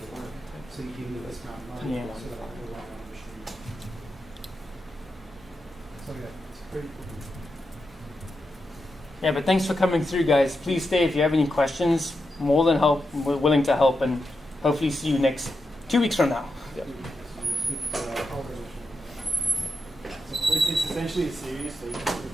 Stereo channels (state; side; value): normal; both; correlation 0.87